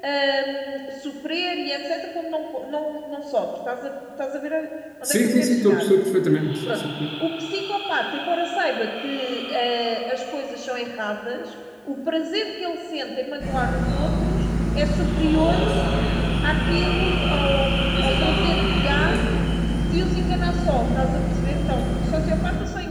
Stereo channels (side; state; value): both; identical; correlation 1.00